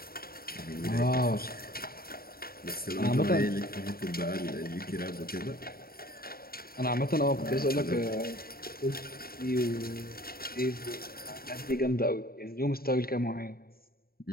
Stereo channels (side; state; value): right; late; 0.43 ms